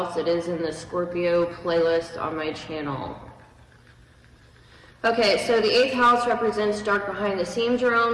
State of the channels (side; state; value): both; identical; correlation 1.00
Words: It is in the Scorpio playlist on my channel. Okay, so the 8th house represents dark behind the scenes